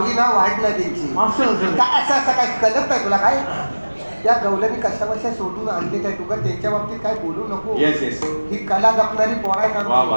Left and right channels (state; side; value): inverted; both; correlation -1.00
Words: ना वाढ नाही त्यांची. काय असं असं काय कळत नाही तुला काय. त्या गवल्यानी कशा बशा सोडून आणले काय तुका त्यांच्या बाबतीत काय बोलू नको. येस येस ही कला जपणारी पोरा वा